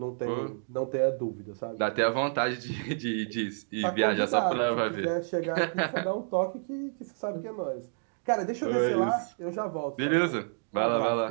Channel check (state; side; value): silent; left; digital silence